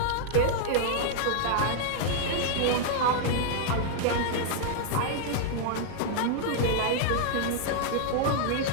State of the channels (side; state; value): both; different; correlation -0.01